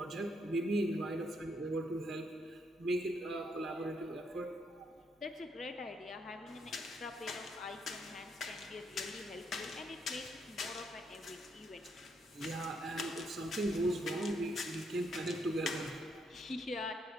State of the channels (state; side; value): normal; both; correlation 0.75